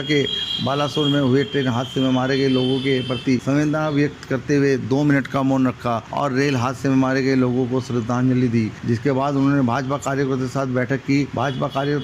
के बालासोर में हुए ट्रेन हादसे में मारे गए लोगों के प्रति संवेदना व्यक्त करते हुए 2 मिनट का मौन रखा और रेल हादसे में मारे गए लोगों को श्रद्धांजलि दी। जिसके बाद उन्होंने भाजपा कार्यकर्ताओं के साथ बैठक की। भाजपा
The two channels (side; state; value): both; identical; correlation 1.00